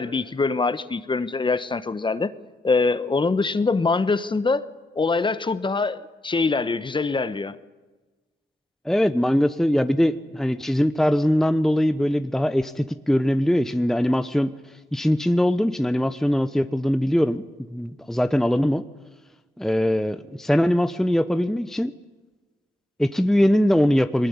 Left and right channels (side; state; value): both; normal; correlation 0.90